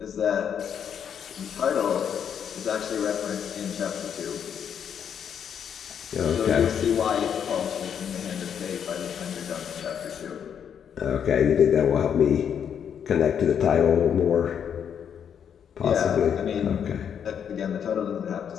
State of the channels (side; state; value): right; quieter; 8.2 dB